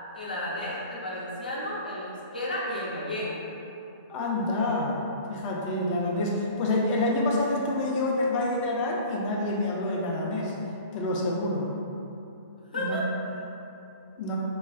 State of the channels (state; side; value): inverted; both; correlation -0.41